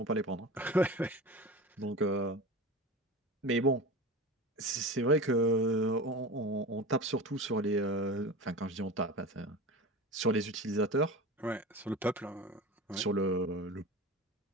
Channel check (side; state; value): both; normal; correlation 0.31